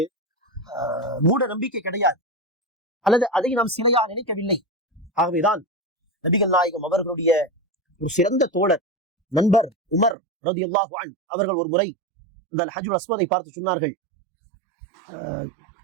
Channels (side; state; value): left; drops out; at 10.2 s